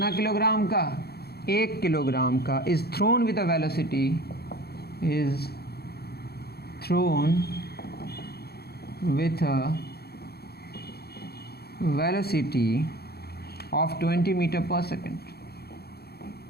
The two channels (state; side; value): late; right; 0.46 ms